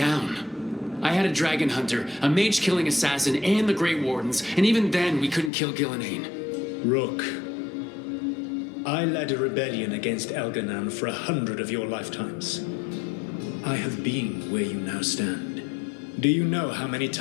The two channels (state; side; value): drops out; right; at 5.5 s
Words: I had a dragon hunter, a mage-killing assassin, and the Grey Wardens, and even then we couldn't kill Gillenane. Rook, I led a rebellion against Elganan for 100 of your lifetimes. I have been where you now stand. Do you know how many